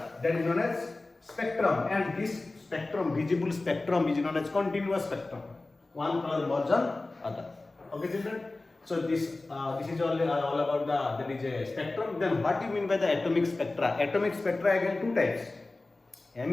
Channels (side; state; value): right; quieter; 3.1 dB